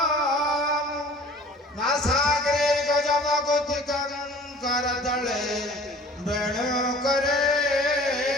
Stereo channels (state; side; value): normal; both; correlation 0.48